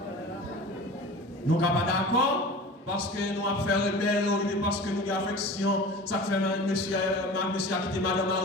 Nous ne sommes pas d'accord parce que nous avons fait rebelle, parce que nous avons affection. Ça fait monsieur a quitté Madame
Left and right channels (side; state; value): both; normal; correlation 0.37